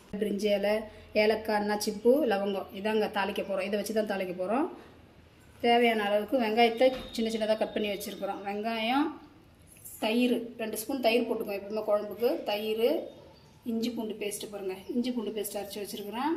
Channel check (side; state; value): both; identical; correlation 1.00